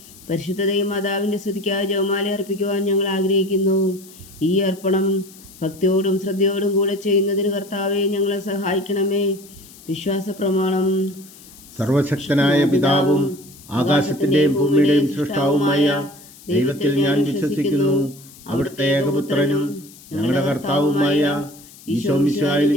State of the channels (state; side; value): noise; left; hiss, 21 dB below the sound